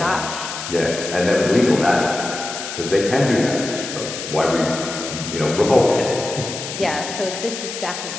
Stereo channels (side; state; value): left; noise; hiss, 7 dB below the sound